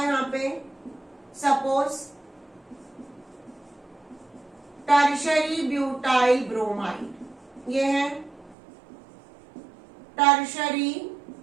यहाँ पे। सपोज टर्शरी ब्यूटाइल ब्रोमाइड, ये है टर्शरी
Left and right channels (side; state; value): left; drops out; at 8.6 s